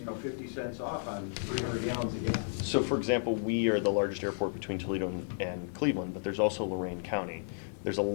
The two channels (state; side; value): silent; right; digital silence